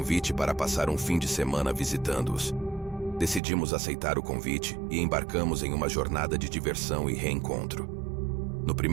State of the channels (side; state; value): left; drops out; at 3.4 s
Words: para passar um fim de semana visitando-os. Decidimos aceitar o convite e embarcamos em uma jornada de diversão e reencontro. No